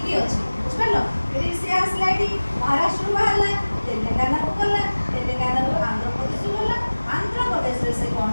ଅଛି, ବୁଝିପାରିଲ? ଏଠି ସେ ଆସିଲା, ଏଠି ମହାରାଷ୍ଟ୍ରରୁ ବାହାରିଲା, ତେଲେଙ୍ଗାନାକୁ ଗଲା, ତେଲେଙ୍ଗାନାରୁ ଆନ୍ଧ୍ରପ୍ରଦେଶକୁ ଗଲା। ଆନ୍ଧ୍ରପ୍ରଦେଶରେ ସେ କ'ଣ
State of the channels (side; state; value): both; inverted; correlation -1.00